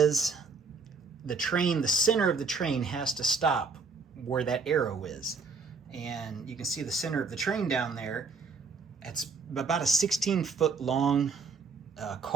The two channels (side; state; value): left; quieter; 4.8 dB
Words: the train, the center of the train has to stop where that arrow is. And you can see the center of the train down there. It's about a 16-foot long